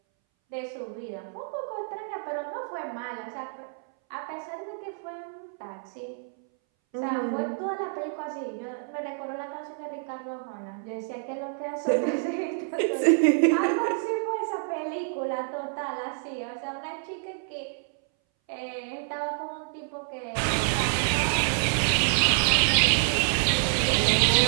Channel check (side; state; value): left; silent; 59 dB below the other